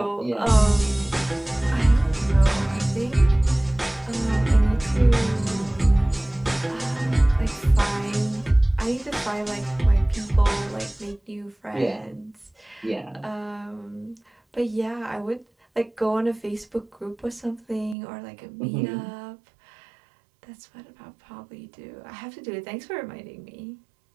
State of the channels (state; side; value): drops out; left; at 17.9 s